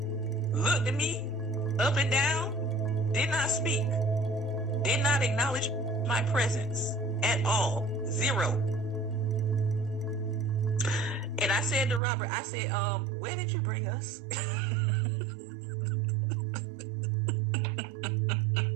looked at me up and down, did not speak, did not acknowledge my presence at all. Zero. And I said to Robert, where did you bring us?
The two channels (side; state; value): left; drops out; at 12.0 s